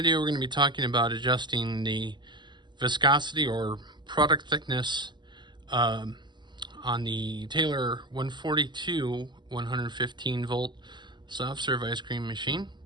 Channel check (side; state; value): left; late; 0.22 ms